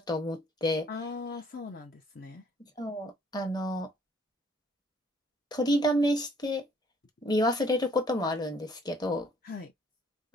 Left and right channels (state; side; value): normal; both; correlation 0.62